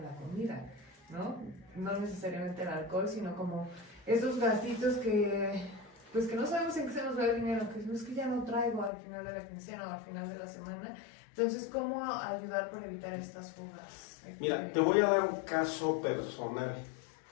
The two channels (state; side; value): drops out; right; at 8.9 s